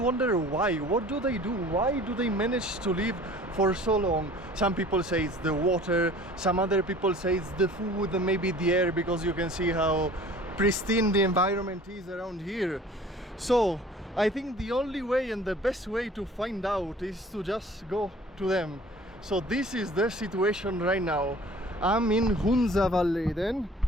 why. What do they do? Why do they manage to live for so long? Some people say it's the water, some other people say it's the food, maybe the air, because you can see how pristine the environment is around here. So I think the only way and the best way to find out is to just go to them. So this is the situation right now. I'm in Hunza Valley then,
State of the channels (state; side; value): normal; both; correlation 0.48